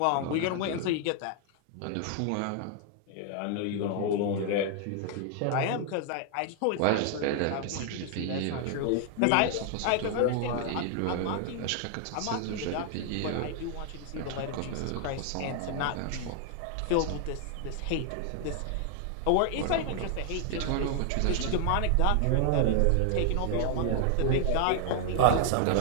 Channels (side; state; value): both; different; correlation 0.00